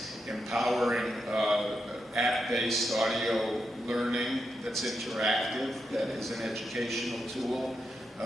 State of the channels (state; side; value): normal; both; correlation 0.85